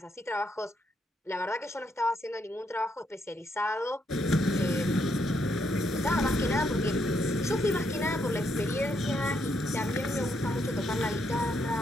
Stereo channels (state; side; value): normal; both; correlation 0.76